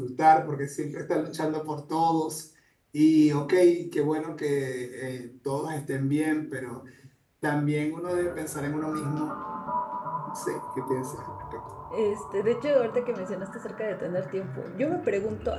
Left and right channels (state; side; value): identical; both; correlation 1.00